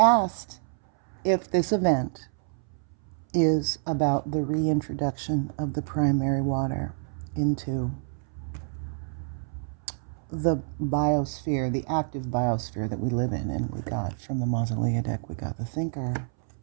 if this event is about the reintroduction of the primary water into the biosphere, the active biosphere that we live in. And we got from the Mausolea deck, we got the thinker,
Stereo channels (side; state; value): left; silent; 60 dB below the other